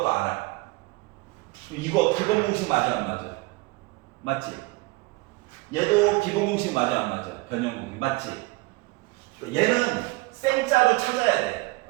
알아. 이거 기본 공식 맞아 안 맞아? 맞지? 얘도 기본 공식 맞아 안 맞아? 변형 공식 맞지? 얘는 생짜로 찾아야 돼.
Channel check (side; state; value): left; quieter; 23.8 dB